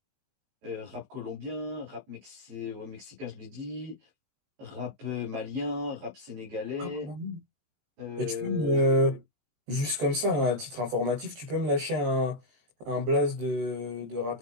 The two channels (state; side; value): late; left; 18 ms